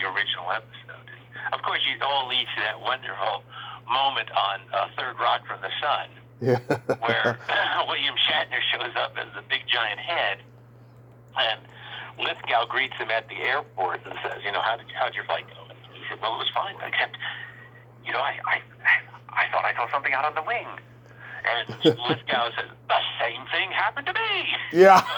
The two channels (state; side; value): identical; both; correlation 1.00